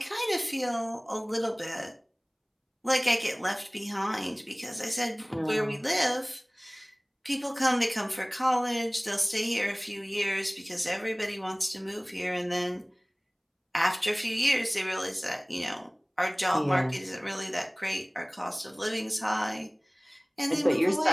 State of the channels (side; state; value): both; identical; correlation 1.00